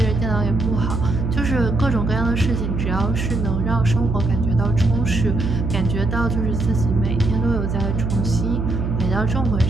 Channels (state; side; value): noise; right; hum, 2 dB below the sound